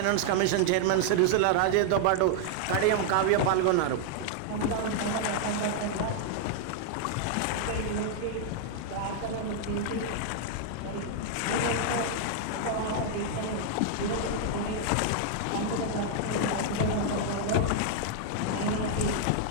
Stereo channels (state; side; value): different; both; correlation 0.00